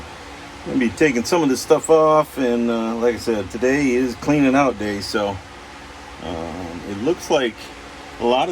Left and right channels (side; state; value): both; identical; correlation 1.00